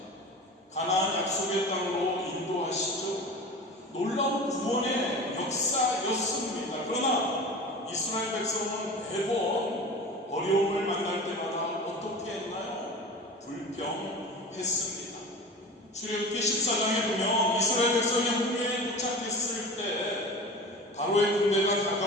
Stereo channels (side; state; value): both; normal; correlation 0.35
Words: 가나안 약속의 땅으로 인도하시죠. 구원의 역사였습니다. 그러나 이스라엘 백성은 매번 어려움을 만날 때마다 어떻게 했나요? 불평했습니다. 출애굽기 14장에 보면 이스라엘 백성이 홍해에 도착했을 때 바로의 군대가